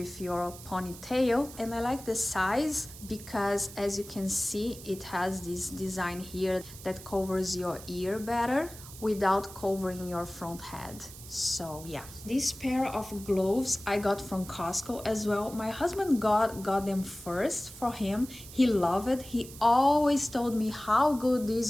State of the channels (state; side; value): noise; right; hiss, 16 dB below the sound